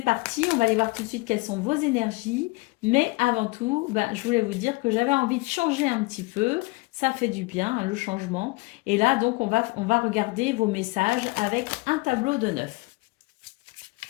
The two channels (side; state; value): right; quieter; 24.1 dB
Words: parti, on va aller voir tout de suite quelles sont vos énergies. Mais avant tout, je voulais vous dire que j'avais envie de changer un petit peu. Ça fait du bien, hein, le changement. Et là, donc, on va regarder vos messages avec un tableau de 9.